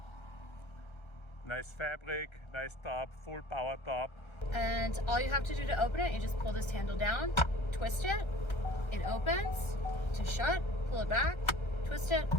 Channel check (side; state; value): right; late; 1.3 ms